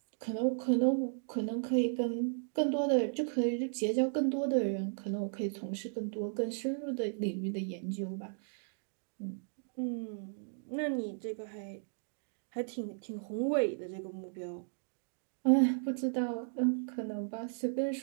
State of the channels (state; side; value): silent; left; digital silence